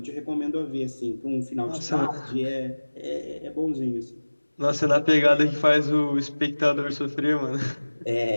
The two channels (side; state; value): both; inverted; correlation -1.00